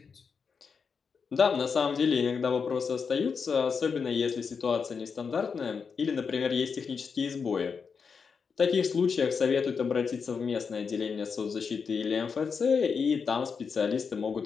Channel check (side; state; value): right; quieter; 5.8 dB